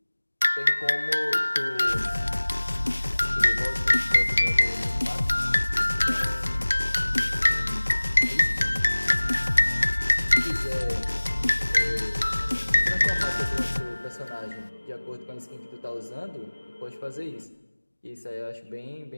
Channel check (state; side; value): inverted; both; correlation -1.00